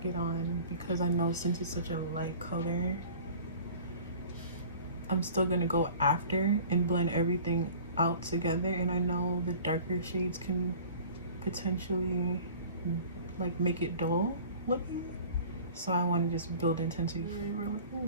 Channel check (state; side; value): inverted; both; correlation -0.45